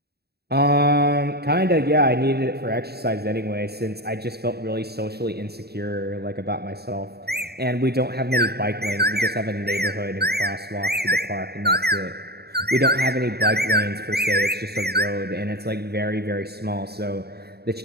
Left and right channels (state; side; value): late; left; 0.47 ms